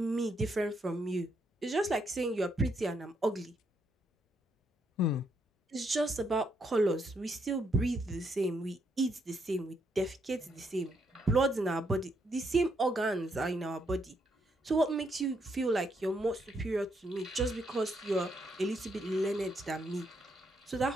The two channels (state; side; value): normal; both; correlation 0.76